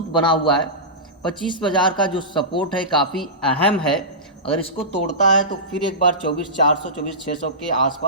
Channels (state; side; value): normal; both; correlation -0.18